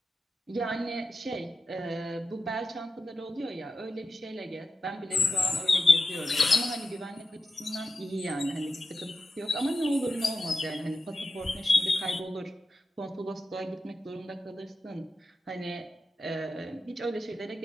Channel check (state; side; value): normal; both; correlation 0.91